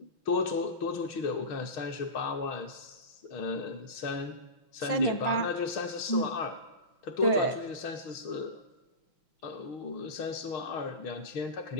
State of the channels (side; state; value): right; late; 5.7 ms